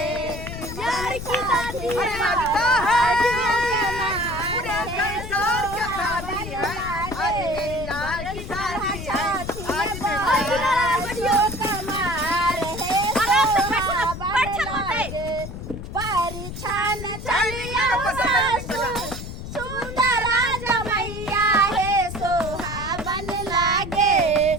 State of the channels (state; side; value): noise; left; rumble, 9 dB below the sound